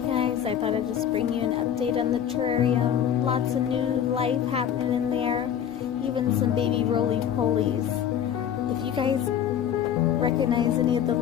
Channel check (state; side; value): quieter; right; 9.3 dB